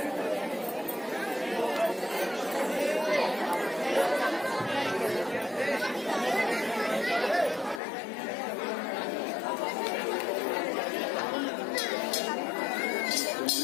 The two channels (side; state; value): right; drops out; at 7.8 s